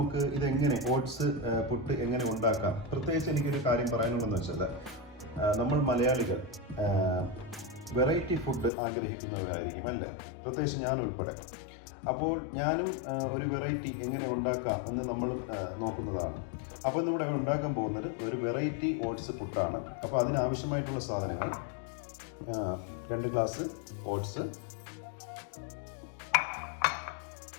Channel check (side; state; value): right; drops out; at 8.7 s